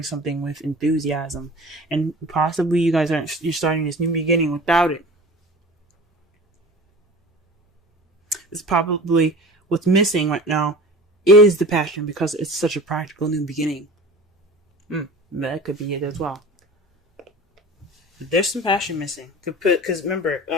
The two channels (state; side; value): normal; both; correlation 0.39